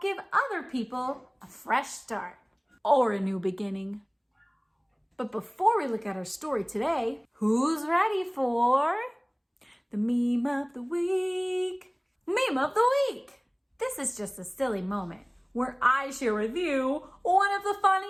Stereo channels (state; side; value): identical; both; correlation 1.00